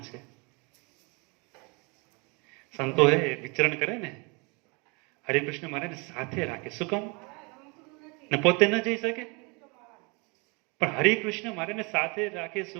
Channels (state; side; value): quieter; left; 30.2 dB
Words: છે. સંતો વિચરણ કરે ને, હરિકૃષ્ણ મહારાજ સાથે રાખે. શું કામ? ને પોતે ન જઈ શકે, પણ હરિકૃષ્ણ મહારાજને સાથે રાખે.